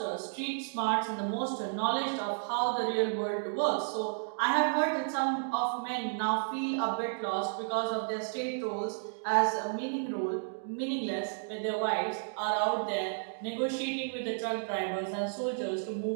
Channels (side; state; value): left; silent; digital silence